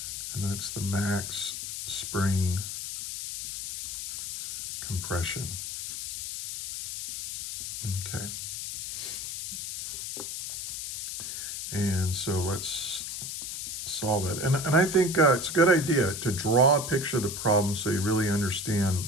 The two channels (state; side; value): noise; left; hiss, 5 dB below the sound